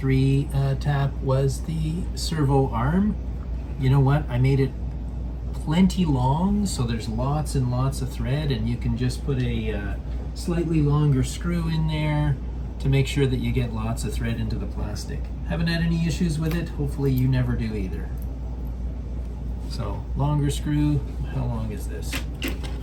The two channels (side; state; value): both; identical; correlation 1.00